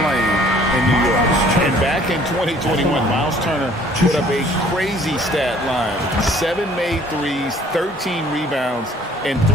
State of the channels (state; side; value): normal; both; correlation 0.56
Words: in New York. And back in 2021, Miles Turner put up a crazy stat line. 7 made threes, 13 rebounds, and